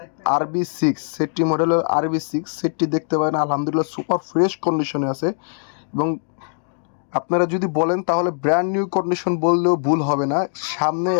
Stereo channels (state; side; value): silent; right; digital silence